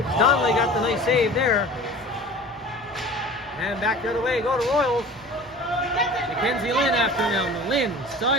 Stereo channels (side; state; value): left; noise; hum, 27 dB below the sound